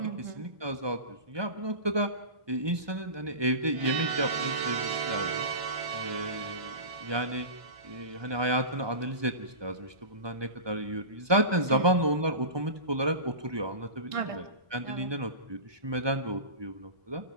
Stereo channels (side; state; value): left; late; 1.2 ms